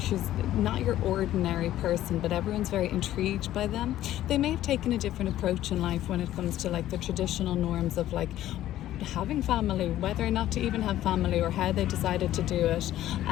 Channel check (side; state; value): right; quieter; 13.4 dB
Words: She's not your ordinary person, but everyone's very intrigued by them. They may have taken a different approach in life when it comes to, like, the traditional norms of, like, having family, whether or not to even have family, or how they decided to do it.